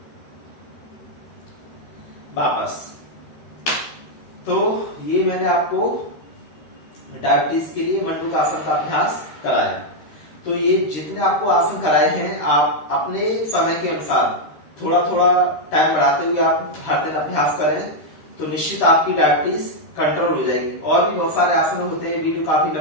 वापस तो ये मैंने आपको डायबिटीज के लिए मंडूकासन का अभ्यास कराया। तो ये जितने आपको आसन कराए हैं, आप अपने समय के अनुसार थोड़ा थोड़ा टाइम बढ़ाते हुए आप हर दिन अभ्यास करें, तो निश्चित आपकी डायबिटीज कंट्रोल हो जाएगी। और भी बहुत सारे आसन होते हैं, वीडियो काफी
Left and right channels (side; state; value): right; late; 13 ms